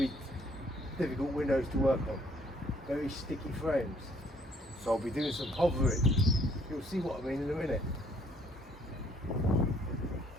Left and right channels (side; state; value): both; normal; correlation 0.63